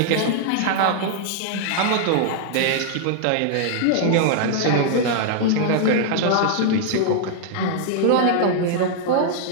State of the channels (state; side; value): different; both; correlation -0.01